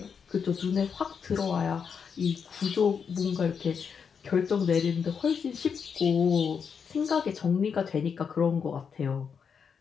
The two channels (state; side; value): quieter; right; 6.5 dB